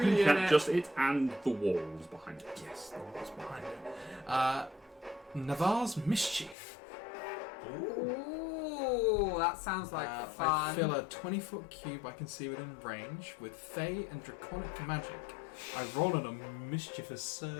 in can it. just it and the walls behind it. Yes, the wall's behind it. Navarre's Mischief. Ooh, that sounds like I fun. fill a 20-foot cube I can see within range with Fey and Draconic magic. I roll on a mischievous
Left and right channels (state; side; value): drops out; right; at 6.6 s